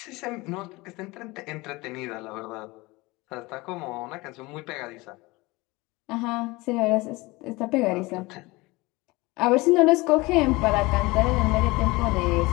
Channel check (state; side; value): quieter; right; 22.5 dB